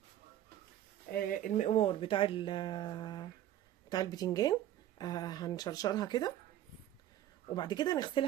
المقوار بتاع البتنجان، هنشرشرها كده وبعد كده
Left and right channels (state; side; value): quieter; left; 12.2 dB